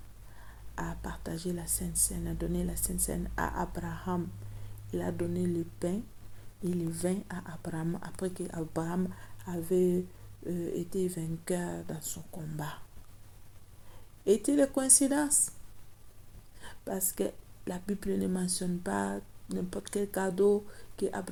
à partager la Sainte Seine, a donné la Sainte Seine à Abraham. Il a donné le pain et le vin à Abraham après qu'Abraham avait été vainqueur dans son combat. Est-il une coïncidence? Parce que la Bible ne mentionne pas n'importe quel cadeau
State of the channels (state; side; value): identical; both; correlation 1.00